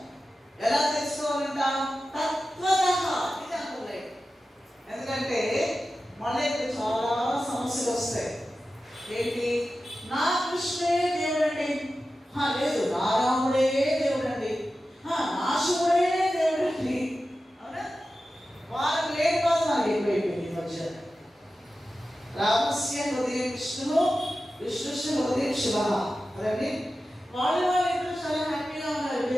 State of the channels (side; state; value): both; normal; correlation 0.93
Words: ఎలా తెలుసుకోవాలంట? తత్వతః. ఇది అనుకోలేదు. ఎందుకంటే మళ్ళీ చాలా సమస్యలు వస్తాయి. ఏంటి? నా కృష్ణే దేవుడండి, లేదు నా రాముడే దేవుడండి, నా శివుడే దేవుడండి. అవునా? వాళ్ళకి లేని బాధ నాకు ఎక్కువైపోయింది ఈ మధ్య. రామస్య హృదయం విష్ణు, విష్ణుస్య హృదయం శివ. అదండి వాళ్ళు ఇద్దరు చాలా హ్యాపీగా ఉన్నారు.